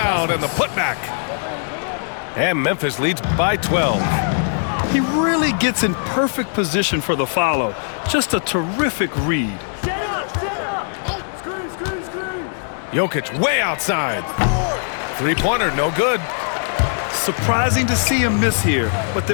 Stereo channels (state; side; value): silent; right; digital silence